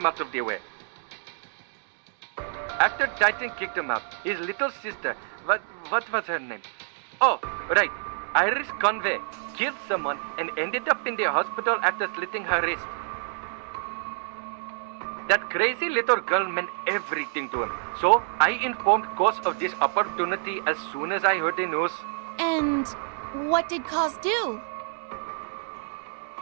out of the way. After Titan kicked him out, his little sister, what was her name? Oh, right, Iris Conway, killed someone and ended up in the hospital after slitting her wrist. That crazy little girl meant everything to him, so I informed Koss of this opportunity as soon as I heard the news. And what did Koss do?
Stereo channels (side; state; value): left; silent; digital silence